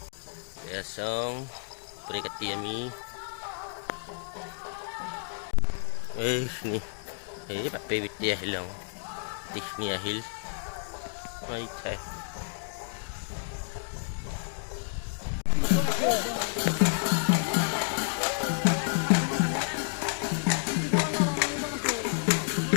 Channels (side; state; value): right; silent; digital silence